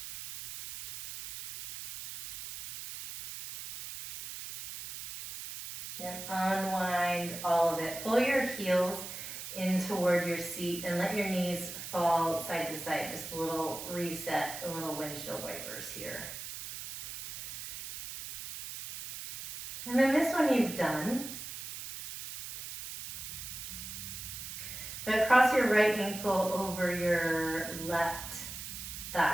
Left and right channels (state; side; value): noise; right; hiss, 9 dB below the sound